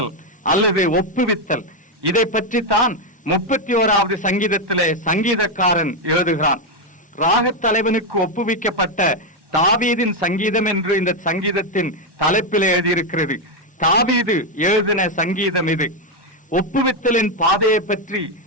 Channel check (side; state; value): both; normal; correlation 0.05